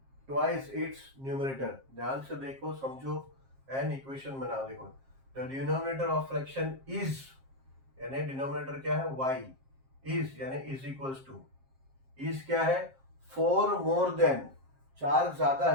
twice its numerator. ध्यान से देखो, समझो एंड इक्वेशन बनाओ. देखो, the denominator of fraction is, यानी डिनोमिनेटर क्या है? y. इज यानी इज इक्वल्स टू, इज क्या है? 4 मोर देन, 4 ज्यादा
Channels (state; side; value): late; left; 7.5 ms